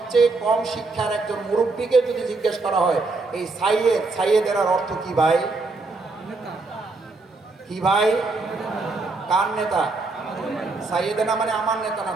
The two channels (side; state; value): left; quieter; 3.6 dB